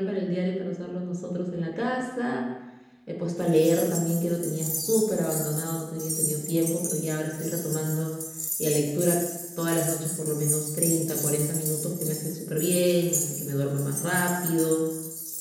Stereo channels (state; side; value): identical; both; correlation 1.00